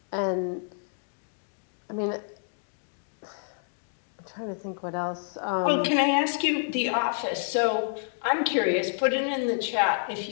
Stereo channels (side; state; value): right; silent; digital silence